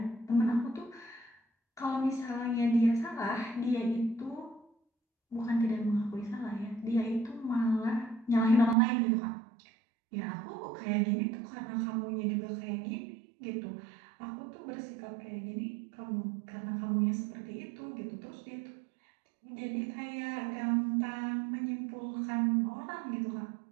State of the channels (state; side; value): drops out; left; at 8.8 s